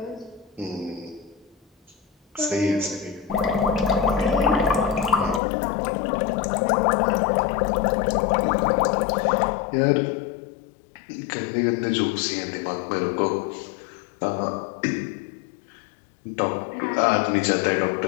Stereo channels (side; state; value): right; drops out; at 5.4 s